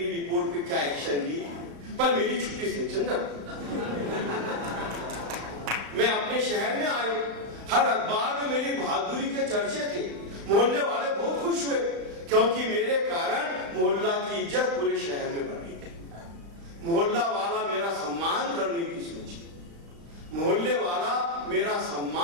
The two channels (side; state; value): left; late; 35 ms